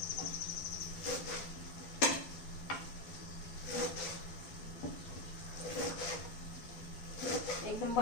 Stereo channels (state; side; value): late; right; 12 ms